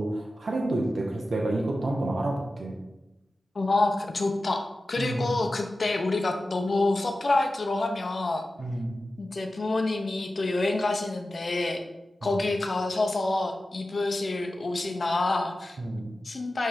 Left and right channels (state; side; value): normal; both; correlation 0.94